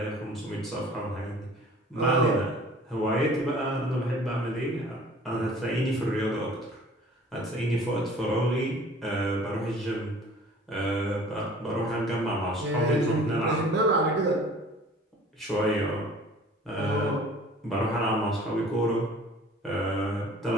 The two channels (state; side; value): normal; both; correlation 0.49